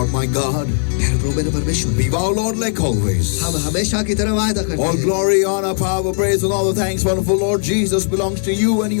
my God, प्यारे प्रभु मेरे परमेश्वर, be thou, Lord, like always. हम हमेशा की तरह वायदा करते All हैं। glory, honor, power, praise, and all the thanks, wonderful Lord Jesus, belongs to you, and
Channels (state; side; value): silent; right; digital silence